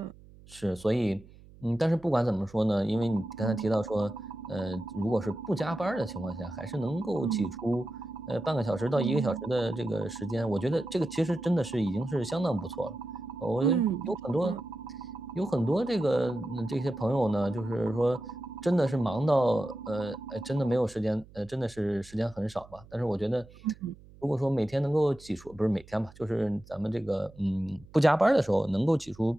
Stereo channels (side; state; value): right; noise; hum, 22 dB below the sound